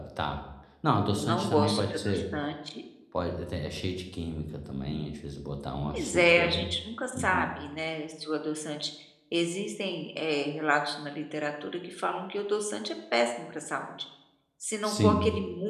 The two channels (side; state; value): both; identical; correlation 1.00